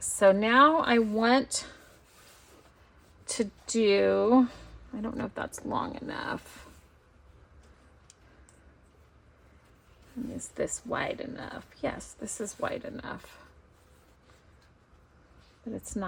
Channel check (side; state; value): both; identical; correlation 1.00